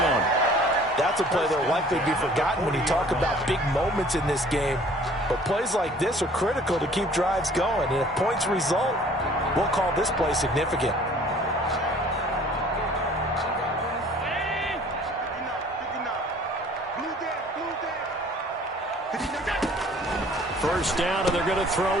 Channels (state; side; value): normal; both; correlation 0.52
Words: That's a play that will likely be forgotten when you talk about big moments in this game. But plays like this are critical to keep drives going. And if points result, we'll call this play significant. First down, and they're going to